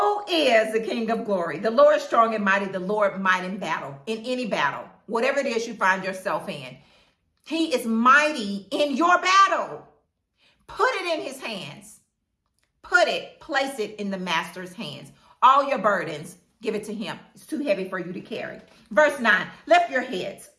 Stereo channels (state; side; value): identical; both; correlation 1.00